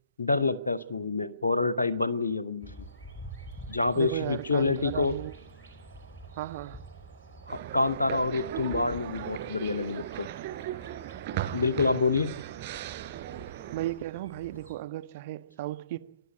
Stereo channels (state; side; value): inverted; both; correlation -0.66